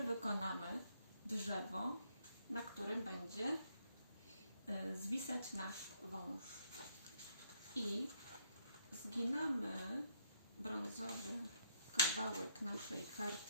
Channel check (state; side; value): inverted; both; correlation -0.72